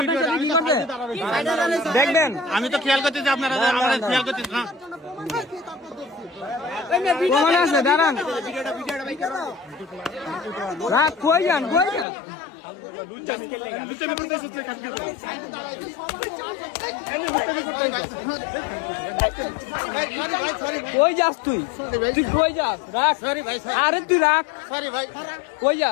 দেখবেন আমি তো খেয়াল করতেছি আপনারা খেয়াল করতেছি না প্রমাণ আছে দাঁড়ান রাত কই যান কই যাস তুই কই যাস রাখ সরি ভাই আরে তুই রাখ সরি ভাই কই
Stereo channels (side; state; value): right; drops out; at 12.1 s